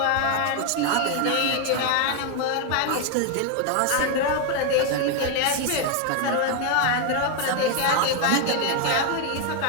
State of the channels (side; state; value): both; different; correlation 0.01